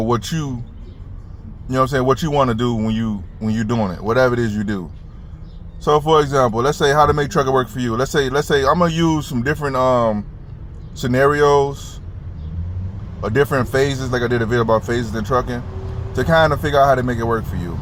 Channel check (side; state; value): both; identical; correlation 1.00